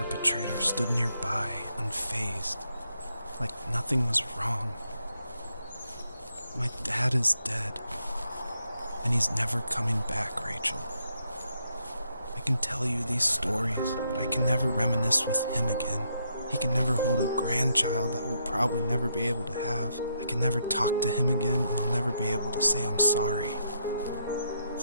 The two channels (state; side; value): inverted; both; correlation -0.77